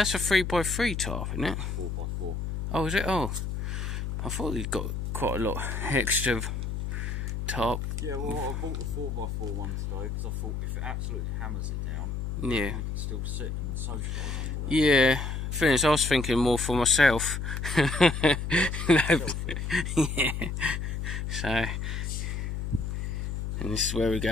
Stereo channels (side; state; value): left; noise; hum, 3 dB below the sound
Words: a 3x3 tarp, isn't it? 4x4. Oh, is it? Oh, I thought he'd got quite a lot extra tarp. Yeah, well, I bought the 4x4 one today because I thought if it absolutely hammers it down, yeah, we can still sit and socialise. Yeah, thing is, I was thinking more for myself. Yeah. So, and this is where we